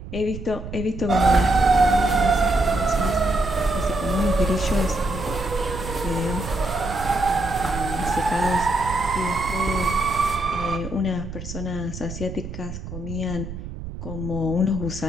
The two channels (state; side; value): noise; right; rumble, 9 dB below the sound